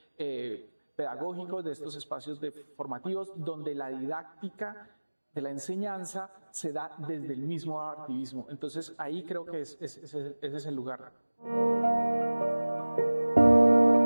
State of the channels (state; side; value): inverted; both; correlation -1.00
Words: pedagógicos, de estos espacios formativos, donde la didáctica de la enseñanza se da desde el mismo activismo. Entonces ahí creo que ese es el lugar.